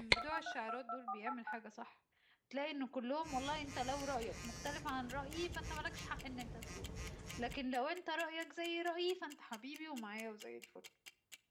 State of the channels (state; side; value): identical; both; correlation 1.00